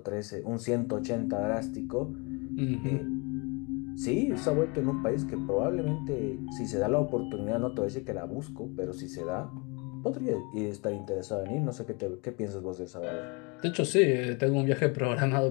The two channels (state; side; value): quieter; right; 29.9 dB